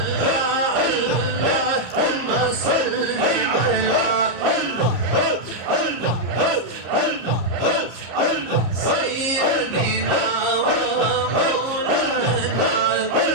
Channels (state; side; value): late; left; 34 ms